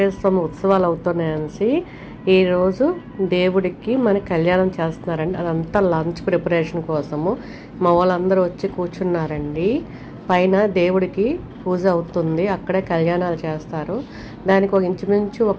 స్వామి ఉత్సవాలు అవుతున్నాయనేసి. ఈరోజు దేవుడికి మన కళ్యాణం చేస్తున్నారండి. అదంతా లంచ్ ప్రిపరేషన్ కోసము మా వాళ్ళందరూ వచ్చి కూర్చున్నారండి. పైన దేవుడికి పూజ అవుతుంది, అక్కడే కళ్యాణాలు చేస్తారు. దానికి ఒక ఇంచుమించు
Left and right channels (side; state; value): both; identical; correlation 1.00